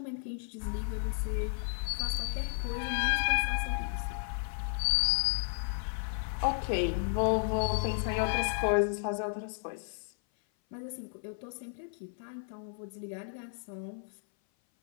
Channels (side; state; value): right; silent; 56 dB below the other